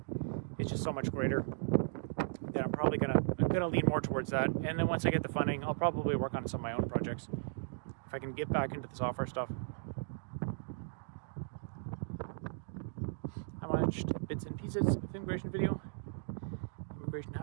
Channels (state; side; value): silent; left; digital silence